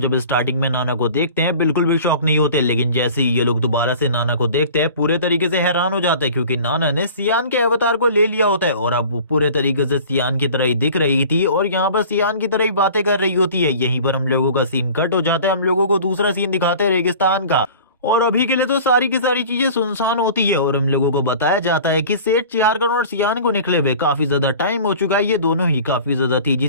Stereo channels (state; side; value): inverted; both; correlation -0.43